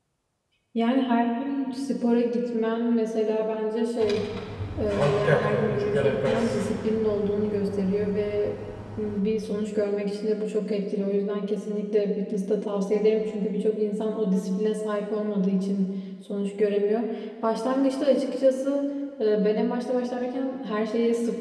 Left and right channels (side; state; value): both; identical; correlation 1.00